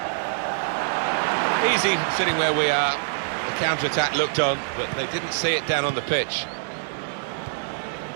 Easy sitting where we are. The counter-attack looked on, but they didn't see it down on the pitch.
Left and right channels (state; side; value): silent; left; digital silence